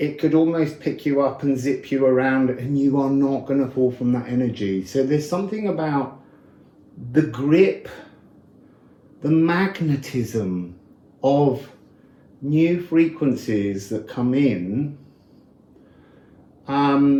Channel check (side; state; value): both; identical; correlation 1.00